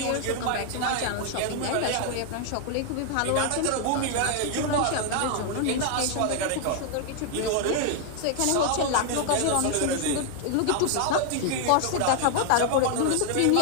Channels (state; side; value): different; both; correlation 0.00